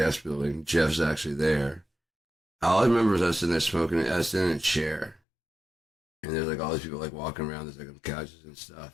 building. Jeff's actually there. All I remember is I was sitting there smoking. I was sitting in a chair, and there's like all these people like walking around. There's like on couches and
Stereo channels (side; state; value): right; drops out; at 5.2 s